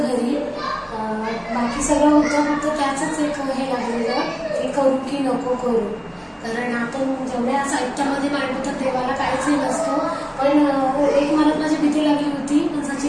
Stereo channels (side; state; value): both; identical; correlation 1.00